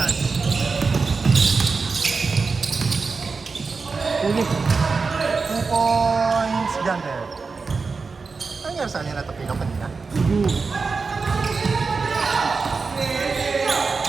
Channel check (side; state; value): left; quieter; 4.6 dB